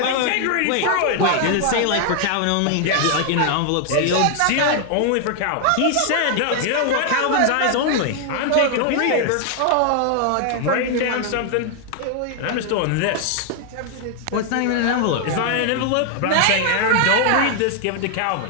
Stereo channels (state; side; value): different; both; correlation 0.00